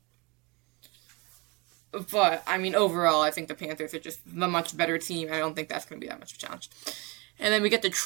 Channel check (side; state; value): left; quieter; 27.8 dB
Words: But, I mean, overall, I think the Panthers are just the much better team. I don't think that's going to be that much of a challenge. And then we get